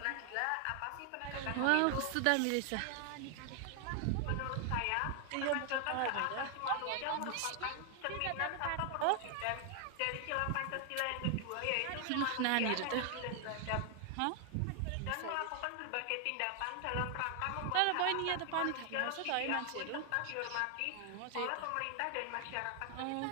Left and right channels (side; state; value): both; different; correlation 0.00